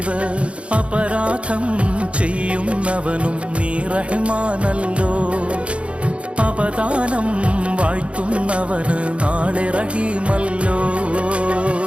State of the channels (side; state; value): left; late; 0.060 ms